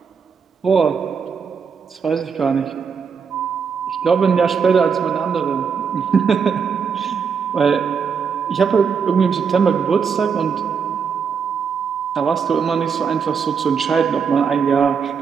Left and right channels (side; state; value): left; quieter; 6.3 dB